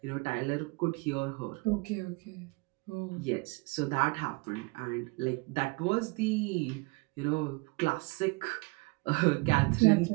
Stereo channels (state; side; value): quieter; left; 27.2 dB